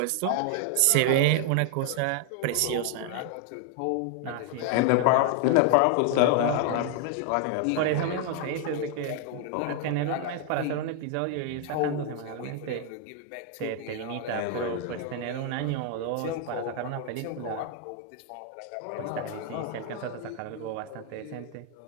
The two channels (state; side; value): different; both; correlation 0.00